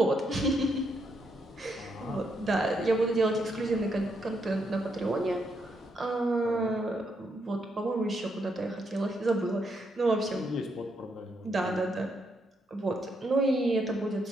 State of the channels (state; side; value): normal; both; correlation 0.78